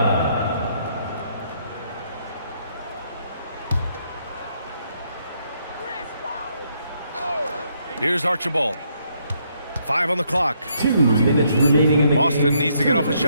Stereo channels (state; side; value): inverted; both; correlation -0.73